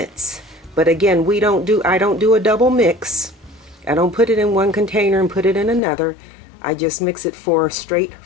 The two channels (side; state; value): right; drops out; at 5.8 s